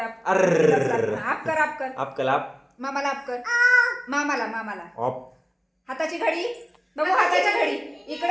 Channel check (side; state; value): both; identical; correlation 1.00